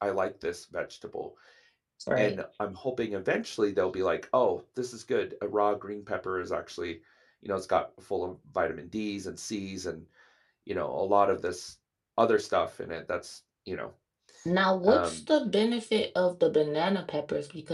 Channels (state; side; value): identical; both; correlation 1.00